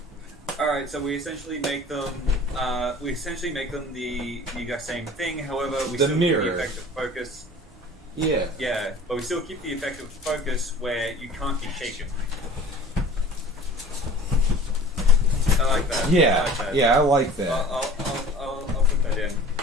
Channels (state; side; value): normal; both; correlation 0.44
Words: All right, so we essentially make them the exact same thing. However, we still keep the effect of focus. Yeah. Yeah, but we still keep the effect of focus where you can't be shaken. I like that. Yeah, I like that. I'll put that in.